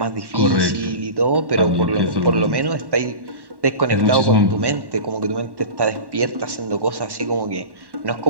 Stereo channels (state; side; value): late; left; 1.1 ms